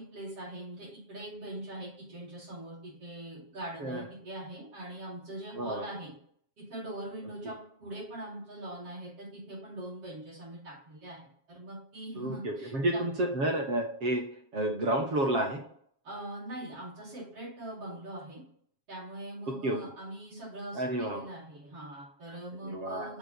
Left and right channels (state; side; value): late; left; 7.4 ms